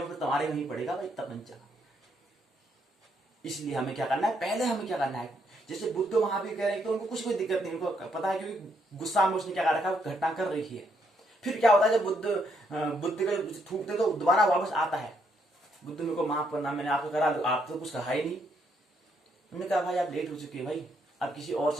फिर तुम्हारे में ही पड़ेगा भाई तपंचा। इसलिए हमें क्या करना है, पहले हमें क्या करना है, जैसे बुद्ध महावीर कह रहे हैं तो उनको कुछ कोई दिक्कत नहीं, उनको पता है क्योंकि गुस्सा में उसने क्या कर रखा है, घटना कर रही है। फिर क्या होता है, जब बुद्ध का थूकते तो दोबारा वापस आता है, बुद्ध मेरे को माफ करना, मैंने आपको करा, आप तो कुछ कहा ही नहीं। उन्होंने कहा भाई आप लेट हो चुकी है भाई, अब किसी और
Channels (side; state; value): both; normal; correlation 0.74